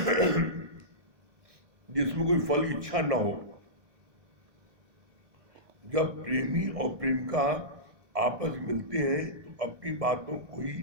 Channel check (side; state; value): left; late; 1.7 ms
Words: जिसमें कोई फल की इच्छा ना हो। जब प्रेमी और प्रेमिका आपस में मिलते हैं तो अपनी बातों को ही